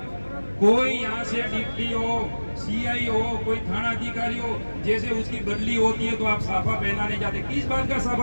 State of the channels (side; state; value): both; inverted; correlation -1.00